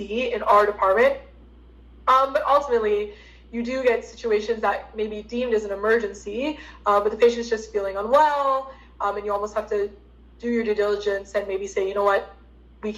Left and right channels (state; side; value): identical; both; correlation 1.00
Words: in our department. But ultimately, you do get situations that may be deemed as an emergency, but the patient's just feeling unwell, and you almost have to do your due diligence and maybe say, you know what, we